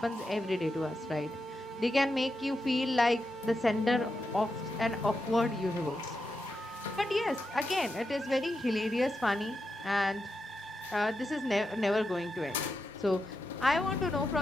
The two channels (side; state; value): both; normal; correlation 0.87